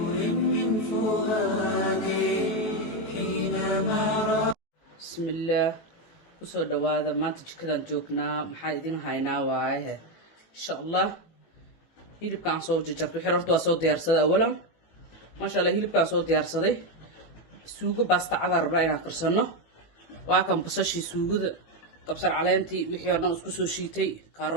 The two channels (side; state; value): right; late; 18 ms